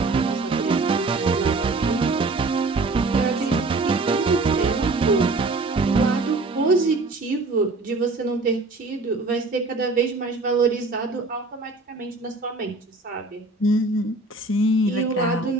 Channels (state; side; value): quieter; left; 3.3 dB